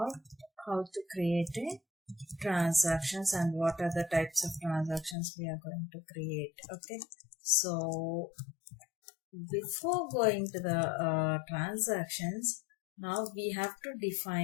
how to create a transactions and what are the types of transactions we are going to create. Okay, so before going to the transactions, now we have to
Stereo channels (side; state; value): right; drops out; at 5.2 s